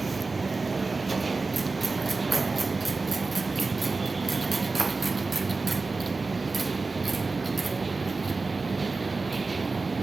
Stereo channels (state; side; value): quieter; left; 3.8 dB